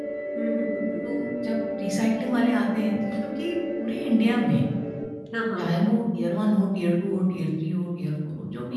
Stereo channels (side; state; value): both; identical; correlation 1.00